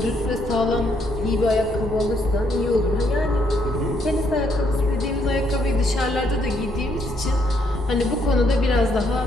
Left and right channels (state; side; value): normal; both; correlation 0.73